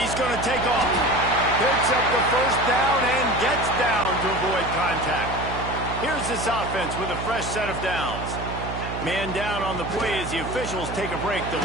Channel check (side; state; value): right; noise; hum, 7 dB below the sound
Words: going to take off. Picks up the 1st down and gets down to avoid contact. Here's this offense with a fresh set of downs. Man down on the play as the officials take a break to